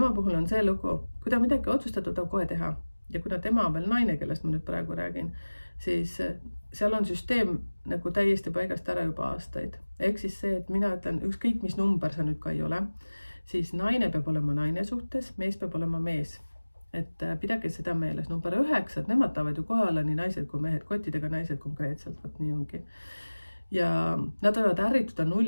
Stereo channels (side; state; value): both; inverted; correlation -1.00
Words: puhul on see lugu, kui ta midagi otsustatud on kohe teha. Ja kuna tema on veel naine, kellest ma nüüd praegu räägin, siis seal on süsteem nagu täiesti paigast ära juba aastaid. Ehk siis see, et mina ütlen, ükskõik mis number sa nüüd ka ei ole, siis naine peab olema naine suhtes, mees peab olema mees. Et pidage seda meeles. Number 9, et nemad tahavad ju kohe olla nii naised kui mehed, kottidega naised konkreetselt, võt nii ongi. Ja nad võivad ärrituda